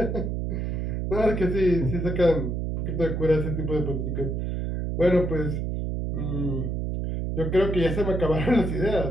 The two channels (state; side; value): noise; right; hum, 2 dB below the sound